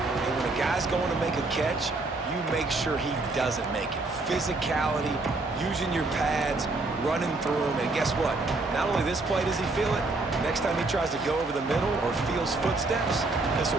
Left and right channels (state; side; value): quieter; left; 3.3 dB